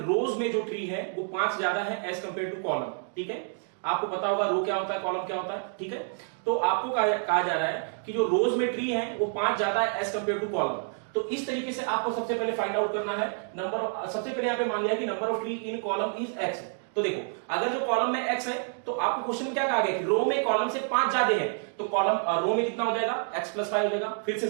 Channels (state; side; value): silent; left; 59 dB below the other